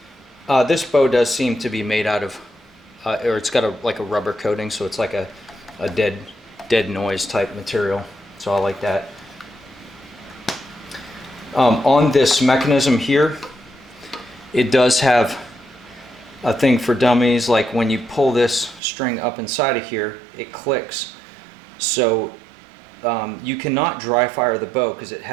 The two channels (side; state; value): left; drops out; at 18.8 s